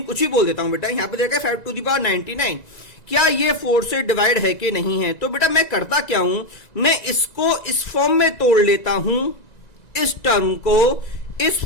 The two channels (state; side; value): late; right; 1.9 ms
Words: कुछ ही बोल देता हूं बेटा, यहां पे देखा 5 टू द पावर 99, क्या ये 4 से डिवाइड है कि नहीं है। तो बेटा मैं करता क्या हूं, मैं इसको इस फॉर्म में तोड़ लेता हूं, इस टर्म को इस